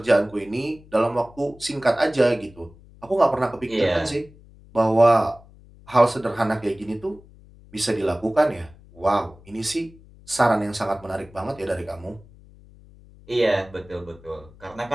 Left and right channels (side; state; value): left; noise; hum, 24 dB below the sound